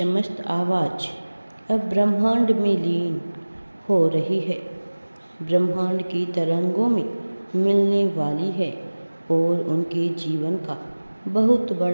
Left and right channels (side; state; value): both; inverted; correlation -1.00